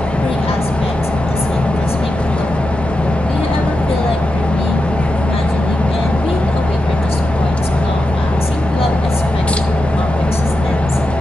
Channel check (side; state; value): both; normal; correlation 0.89